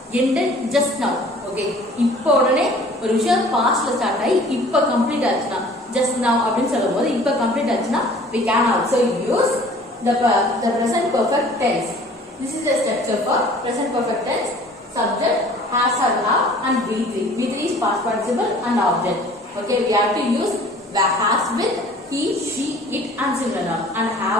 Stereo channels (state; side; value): normal; both; correlation 0.50